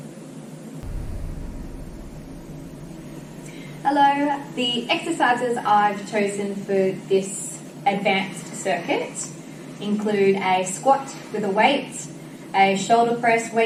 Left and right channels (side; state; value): both; identical; correlation 1.00